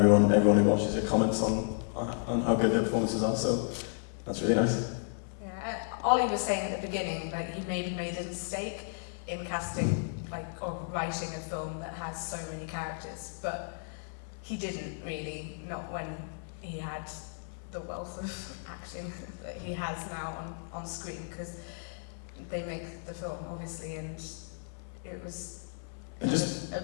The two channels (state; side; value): silent; right; 56 dB below the other